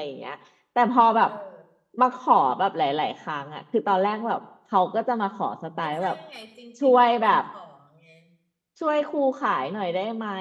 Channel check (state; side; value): identical; both; correlation 1.00